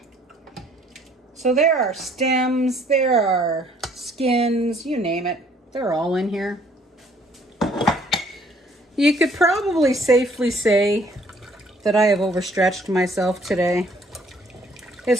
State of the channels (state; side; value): normal; both; correlation 0.61